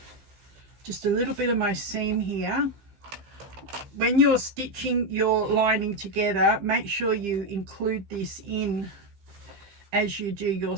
just a little bit of my seam here. When you're stitching your lining together, make sure you include this in as you do your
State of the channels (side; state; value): left; late; 15 ms